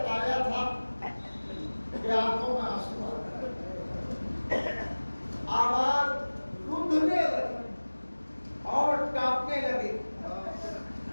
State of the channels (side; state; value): both; inverted; correlation -1.00